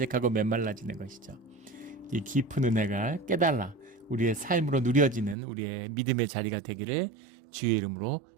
메말라지는 것이죠. 이 깊은 은혜가 깨달아 우리의 삶으로 누려지는 우리의 믿음의 자리가 되기를 주의 이름으로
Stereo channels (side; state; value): left; drops out; at 5.4 s